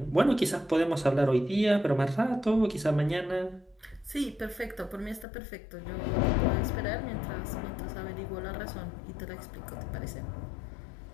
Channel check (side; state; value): right; drops out; at 5.2 s